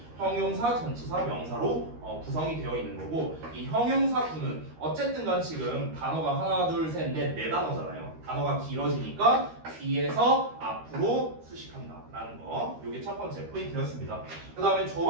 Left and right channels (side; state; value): left; late; 13 ms